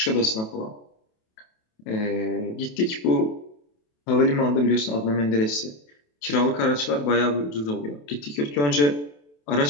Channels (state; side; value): late; right; 28 ms